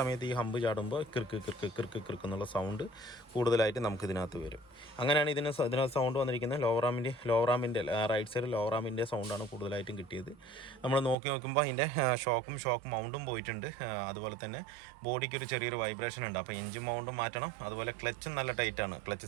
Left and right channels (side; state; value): left; drops out; at 11.2 s